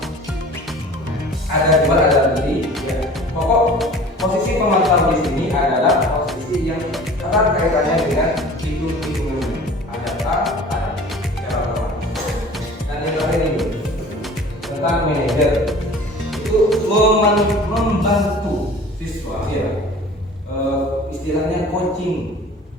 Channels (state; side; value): normal; both; correlation 0.44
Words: Ada jual ada beli. Ya. Pokok posisi pemantau di sini adalah posisi yang erat kaitannya dengan hitung-hitungan. Ada A, ada cara otomatis. Dan yang terakhir ini tentang manajer itu membantu siswa, ya. Istilahnya coaching.